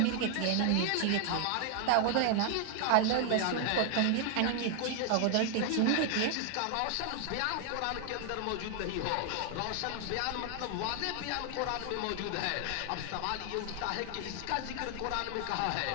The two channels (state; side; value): different; both; correlation 0.00